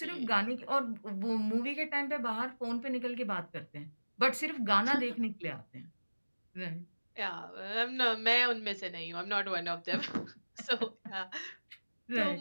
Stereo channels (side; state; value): both; inverted; correlation -1.00